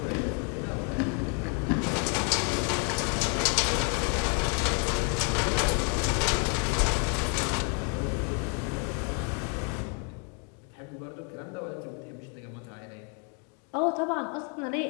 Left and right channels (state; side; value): quieter; right; 39.2 dB